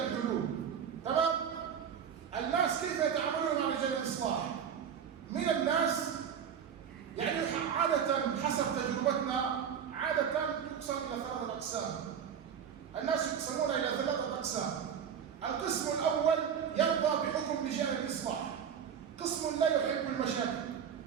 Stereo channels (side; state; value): left; quieter; 7.9 dB